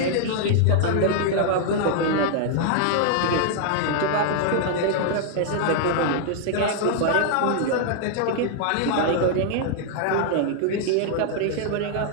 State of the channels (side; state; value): both; different; correlation 0.00